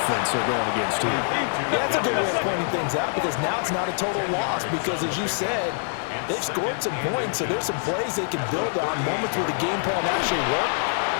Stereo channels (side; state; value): right; silent; digital silence